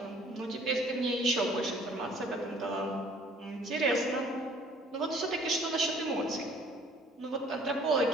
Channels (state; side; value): normal; both; correlation 0.56